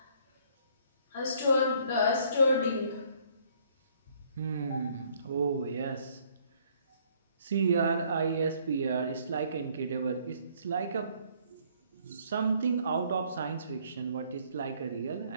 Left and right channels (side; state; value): both; inverted; correlation -0.63